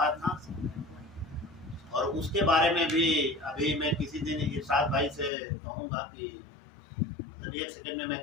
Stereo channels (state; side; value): drops out; right; at 5.3 s